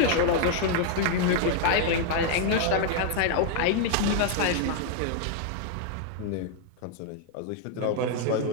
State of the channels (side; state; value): both; different; correlation 0.00